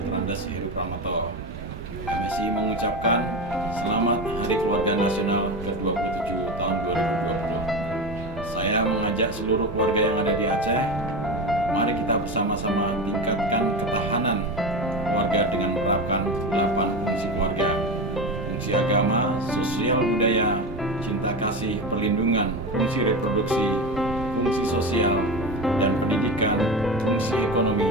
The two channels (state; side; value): normal; both; correlation 0.22